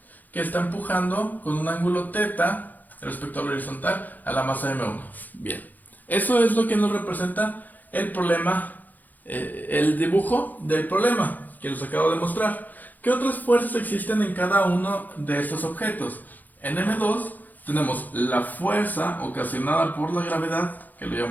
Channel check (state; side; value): late; right; 0.083 ms